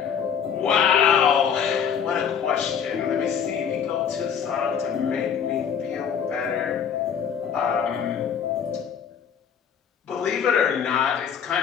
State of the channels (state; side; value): quieter; right; 7.6 dB